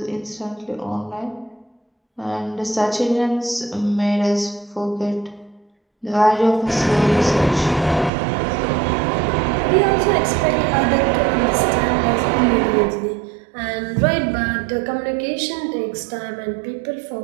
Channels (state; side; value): drops out; left; at 8.1 s